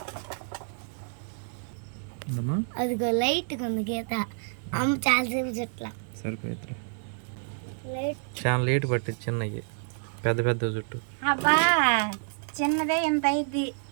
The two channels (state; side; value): silent; left; digital silence